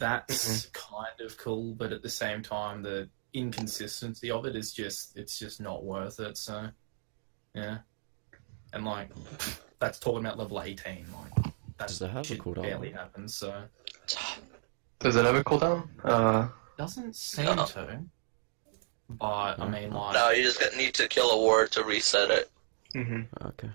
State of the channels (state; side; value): silent; left; digital silence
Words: kind of cool, but at the same time, the inconsistency of it is just, it's just not worth it, so, yeah. And, like, that's talking about level 18, like, that Does it have a shit cooldown? barely happens, so. Does it have a cooldown? Doesn't seem No. to. But, I mean, like... No, you just need to kill a ward to reset it. Mm-hmm. Okay.